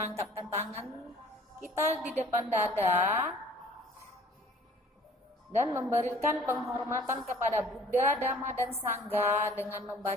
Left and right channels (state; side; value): normal; both; correlation 0.51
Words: tangan kita di depan dada dan memberikan penghormatan kepada Buddha, Dhamma, dan Sangha dengan